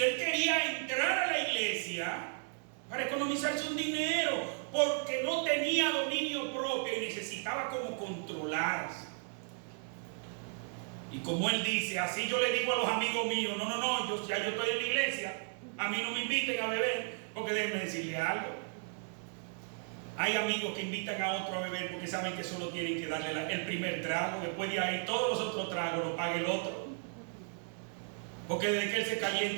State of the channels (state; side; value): silent; left; 55 dB below the other